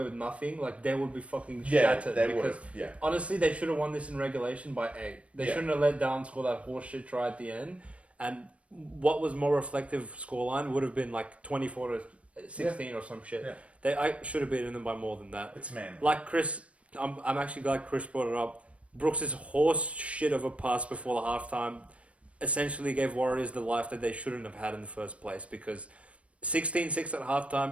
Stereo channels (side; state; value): left; late; 0.063 ms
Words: with nothing, they would be fucking shattered. They would have. Yeah. Honestly, they should have won this in regulation by 8. They shouldn't have let down score that horseshit try at the end. And what was more reflective scoreline would have been 24-16 or some shit. Yeah. I should have beaten them by more than that. It's Manly. Chris, I'm actually glad Chris brought it up. Brooks' horse shit of a pass before the halftime essentially gave Warriors the life that they shouldn't have had in the first place, because 16-6 at